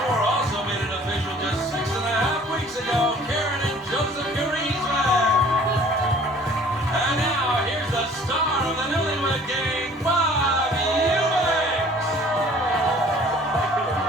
4 also made it official just 6.5 weeks ago, Karen and Joseph Griezmann. And now, here's the star of the Newlywed Game, Bob Ewings.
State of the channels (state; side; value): normal; both; correlation 0.52